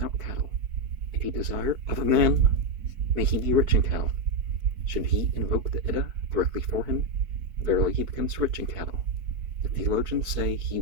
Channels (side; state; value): left; late; 4.6 ms